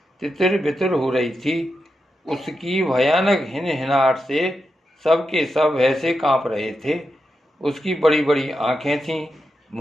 तितर बितर हो रही थी। उसकी भयानक हिनहिनाहट से सबके सब ऐसे कांप रहे थे। उसकी बड़ी बड़ी आंखें थीं।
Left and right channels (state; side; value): normal; both; correlation 0.87